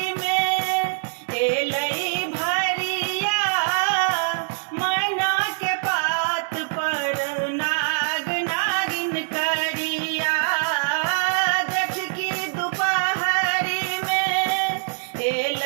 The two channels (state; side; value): silent; left; digital silence